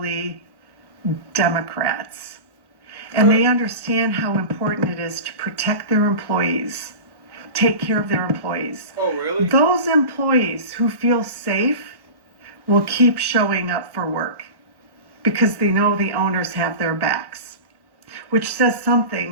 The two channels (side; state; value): left; late; 1.1 ms